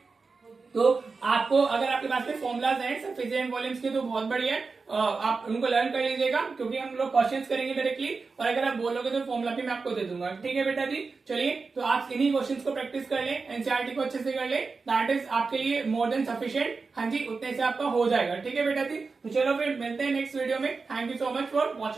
तो आपको अगर आपके पास में फॉर्मुलाज हैं सरफेस एंड वॉल्यूम्स के तो बहुत बढ़िया है, आप उनको लर्न कर लीजिएगा क्योंकि हम लोग क्वेश्चंस करेंगे डायरेक्टली, और अगर आप बोलोगे तो फॉर्मुला भी मैं आपको दे दूंगा, ठीक है बेटा जी। चलिए तो आप इन्हीं क्वेश्चंस को प्रैक्टिस कर लें, एनसीईआरटी को अच्छे से कर लें, दैट इज आपके लिए मोर देन सफिशिएंट। हाँ जी, उतने से आपका हो जाएगा, ठीक है बेटा जी। तो चलो फिर मिलते हैं नेक्स्ट वीडियो में। Thank you so much for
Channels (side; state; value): left; quieter; 4.4 dB